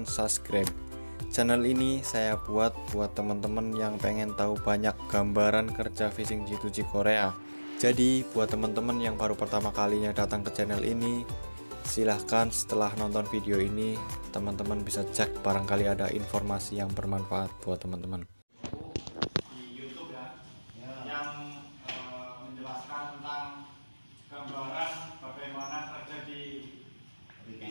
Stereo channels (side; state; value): both; inverted; correlation -1.00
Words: subscribe. Channel ini saya buat teman-teman yang pengen tahu banyak gambaran kerja fishing G2G Korea. Jadi buat teman-teman yang baru pertama kalinya datang ke channel ini, silahkan setelah nonton video ini teman-teman bisa cek barangkali ada informasi yang bermanfaat buat teman-teman. Di YouTube ya, yang menjelaskan tentang gambaran bagaimana kerja di